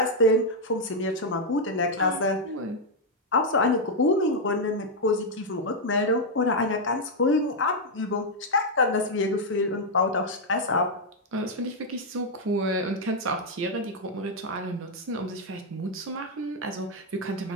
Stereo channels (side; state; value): both; normal; correlation 0.00